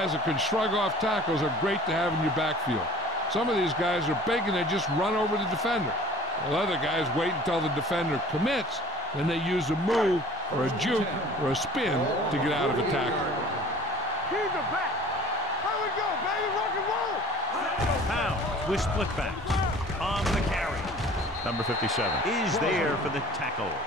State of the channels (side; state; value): both; normal; correlation 0.47